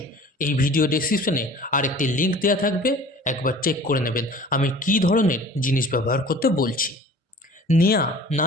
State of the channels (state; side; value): normal; both; correlation 0.45